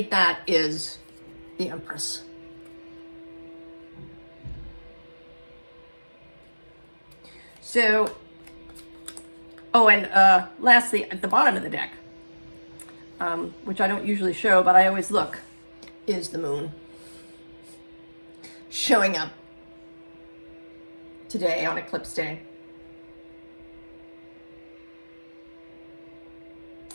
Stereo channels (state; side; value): inverted; both; correlation -1.00